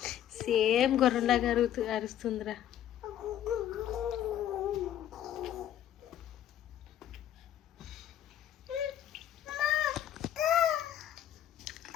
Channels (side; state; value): right; quieter; 11.1 dB